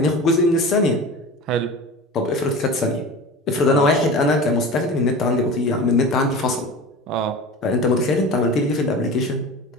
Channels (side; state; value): both; normal; correlation 0.33